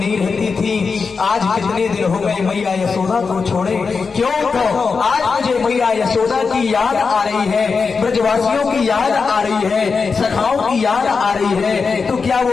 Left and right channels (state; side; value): quieter; right; 5.0 dB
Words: रहती थी। आज कितने दिन हो गए मैया यशोदा को छोड़े। क्यों? तो आज मुझे मैया यशोदा की याद आ रही है, ब्रजवासियों की याद आ रही है, सखाओं की याद आ रही है। तो क्या